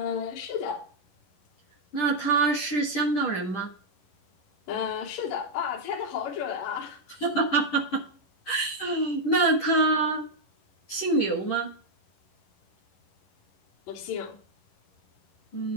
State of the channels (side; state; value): right; late; 10 ms